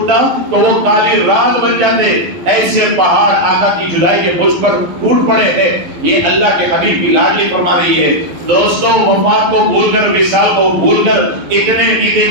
تو وہ کالی رات بن جاتے، ایسے پہاڑ آقا کی جدائی کے مجھ پر ٹوٹ پڑے ہیں۔ یہ اللہ کے حبیب کی لاڈلی فرما رہی ہے۔ دوستوں وفات کو بھول کر، وصال کو بھول کر اتنے عید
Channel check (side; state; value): left; late; 12 ms